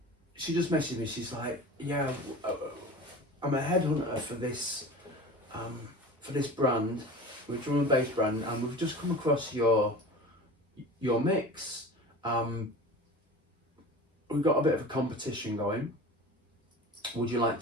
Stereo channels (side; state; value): both; normal; correlation 0.36